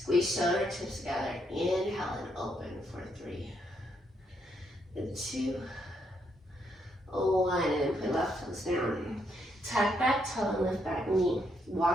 shoulder tips together. Inhale and open for 3, and 2, 1. And then put left toes down. Tuck back toe and lift back knee.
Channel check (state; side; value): normal; both; correlation 0.76